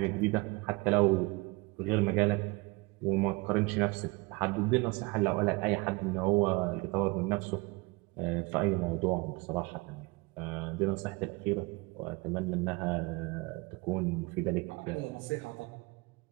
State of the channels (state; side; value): quieter; left; 25.5 dB